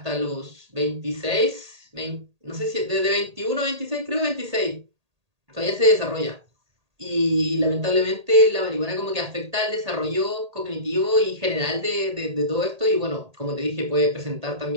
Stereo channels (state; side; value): late; left; 1.8 ms